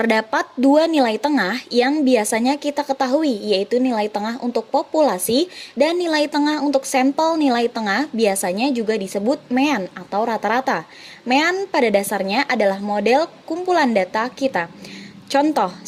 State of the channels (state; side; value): identical; both; correlation 1.00